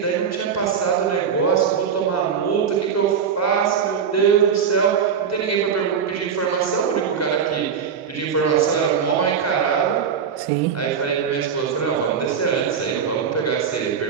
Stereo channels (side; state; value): left; quieter; 7.1 dB